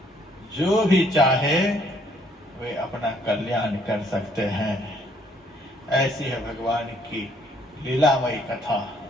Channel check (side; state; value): both; normal; correlation 0.65